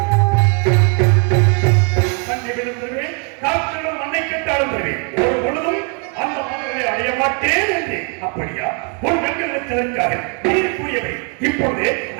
அப்படியா? ஒரு வெண்கலத்திற்காக நீர் கூறியவை இப்பொழுது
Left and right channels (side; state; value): left; quieter; 37.6 dB